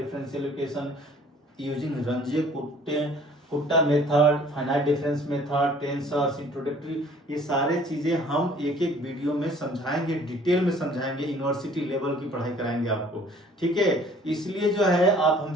equation using Runge Kutta method, finite difference method, tensors, introductory, ये सारे चीजें हम एक एक वीडियो में समझाएंगे, डिटेल में समझाएंगे, यूनिवर्सिटी लेवल की पढ़ाई कराएंगे आपको, ठीक है। इसलिए जो है आप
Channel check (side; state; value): both; normal; correlation 0.54